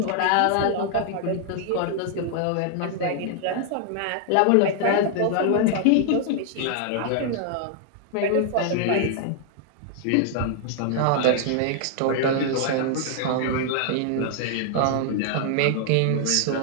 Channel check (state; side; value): different; both; correlation 0.00